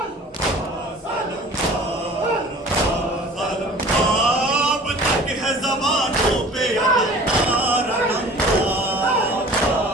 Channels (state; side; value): normal; both; correlation 0.45